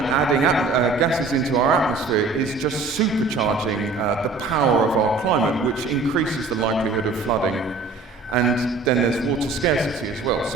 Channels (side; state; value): left; quieter; 3.8 dB